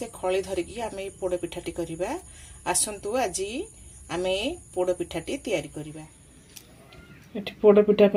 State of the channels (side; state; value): both; identical; correlation 1.00